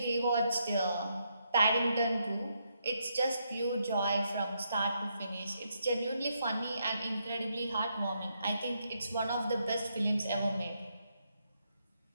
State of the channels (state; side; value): inverted; both; correlation -0.78